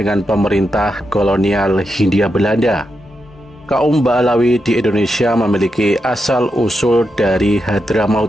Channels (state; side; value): normal; both; correlation 0.85